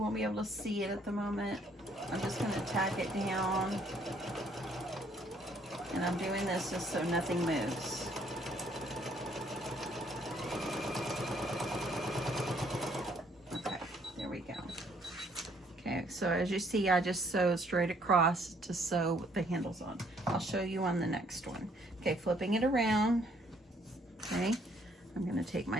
be able to see it at the moment. I'm just going to tack it down. And I'm doing this just so nothing moves. So as you see, I just sew straight across to sew the handles on. I'll show you on the next one. Okay, flipping it around. Okay, I'm gonna take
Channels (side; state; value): both; normal; correlation 0.65